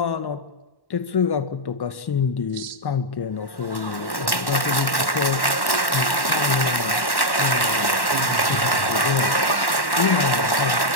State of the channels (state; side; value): late; right; 1.1 ms